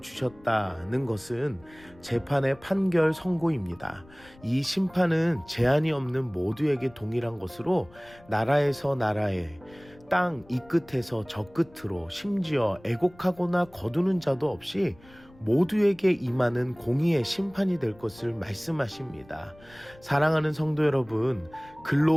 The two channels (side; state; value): left; noise; rumble, 25 dB below the sound